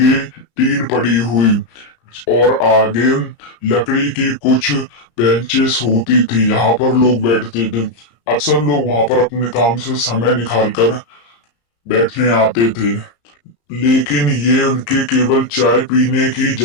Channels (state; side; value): late; right; 35 ms